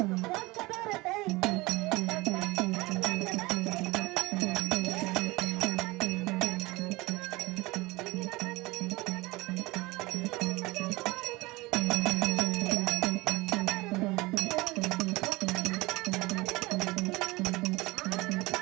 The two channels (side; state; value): left; quieter; 22.4 dB